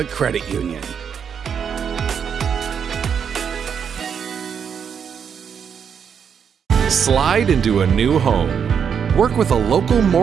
Credit Union. Slide into a new home. Work with a local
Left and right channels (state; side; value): quieter; left; 7.3 dB